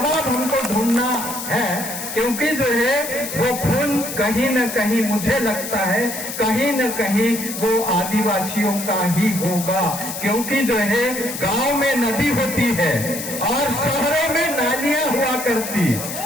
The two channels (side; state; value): left; noise; hiss, 7 dB below the sound